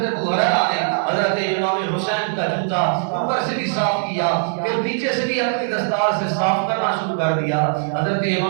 ابو ہریرہ نے حضرت امام حسین کا جوتا اوپر سے بھی صاف کیا، پھر پیچھے سے بھی اپنی دستار سے صاف کرنا شروع کر دیا. حضرت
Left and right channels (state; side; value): silent; left; digital silence